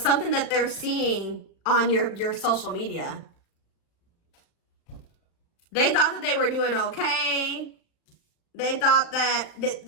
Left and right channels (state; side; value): late; right; 36 ms